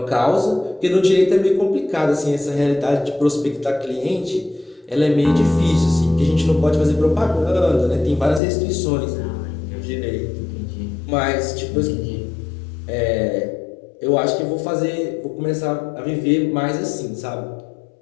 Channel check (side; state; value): right; drops out; at 8.4 s